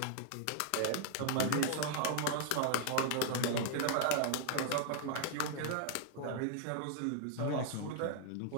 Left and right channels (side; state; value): both; different; correlation -0.01